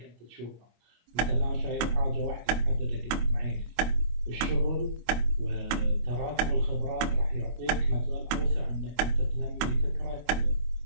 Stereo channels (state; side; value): late; left; 25 ms